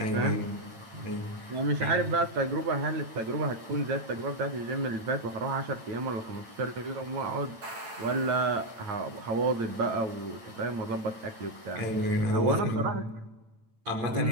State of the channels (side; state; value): left; late; 8.9 ms